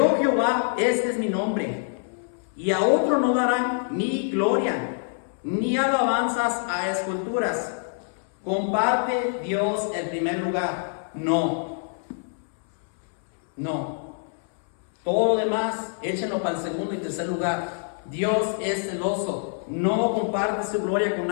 Jehová, este es mi nombre, y a otro no darán ni gloria, ni alabanzas a esculturas. ¿Comparte Dios el primer lugar? No. No. Todo lo demás, échenlo para el segundo y tercer lugar. Dios es celoso, no comparte su gloria con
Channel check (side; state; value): right; silent; 61 dB below the other